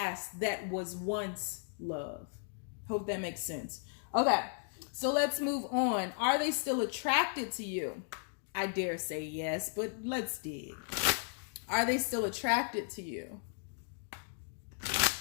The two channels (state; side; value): silent; right; 54 dB below the other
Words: that was once love. Hope that makes sense. Okay, so let's move on. Are they still attracted to you? I dare say yes, but let's dig. Are they still attracted to you?